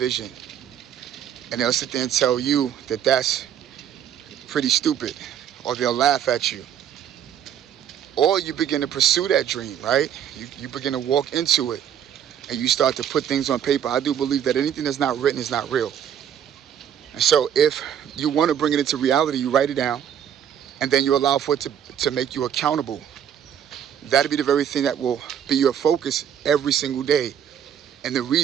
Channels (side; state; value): left; quieter; 9.2 dB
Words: And they'll sit there and tell you that that's pretty stupid, or they'll laugh at you. Or you begin to pursue that dream, right? You begin to walk into it and you start to put things on paper. I do believe that anything that's not written is not real. And so if you want to bring it into reality, you write it down and then you allow for it to make you accountable. That'll be the very thing that will be your focus every single day. And the